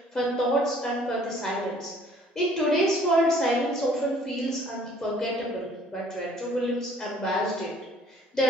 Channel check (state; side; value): normal; both; correlation 0.57